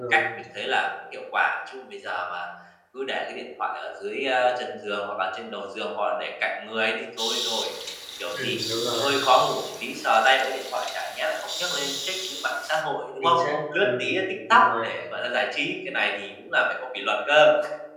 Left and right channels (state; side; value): identical; both; correlation 1.00